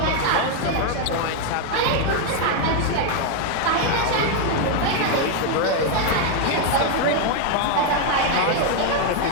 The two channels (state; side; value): different; both; correlation 0.01